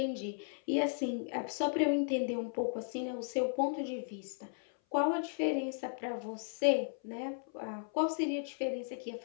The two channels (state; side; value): silent; right; 54 dB below the other